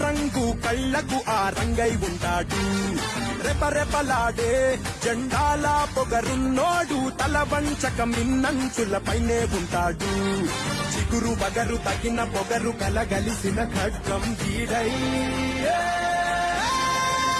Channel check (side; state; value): both; identical; correlation 1.00